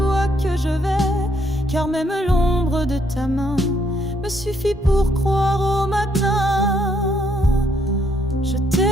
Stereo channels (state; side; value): normal; both; correlation 0.71